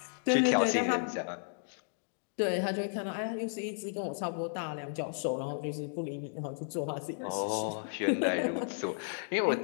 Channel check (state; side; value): silent; right; digital silence